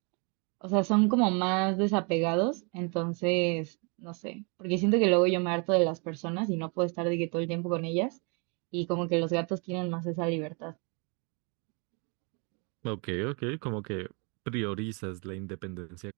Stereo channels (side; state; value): left; quieter; 34.7 dB